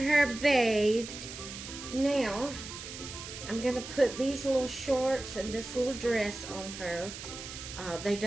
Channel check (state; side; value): noise; right; hiss, 11 dB below the sound